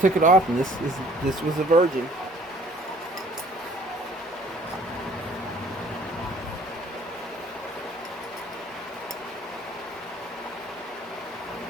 it off, and this was a virgin.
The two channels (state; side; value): normal; both; correlation 0.55